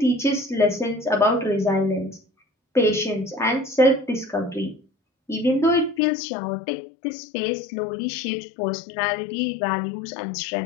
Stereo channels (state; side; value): drops out; right; at 6.0 s